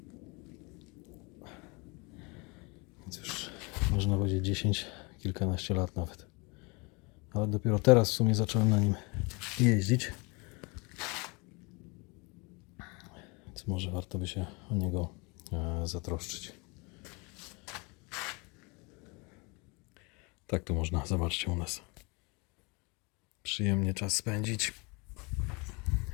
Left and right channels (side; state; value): right; quieter; 29.3 dB